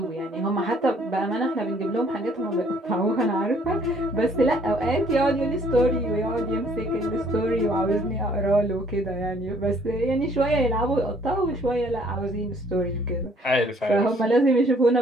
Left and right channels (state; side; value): normal; both; correlation 0.61